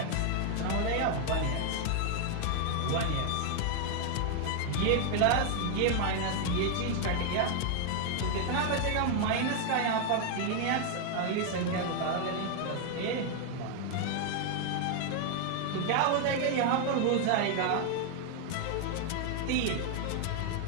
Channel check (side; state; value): both; different; correlation 0.00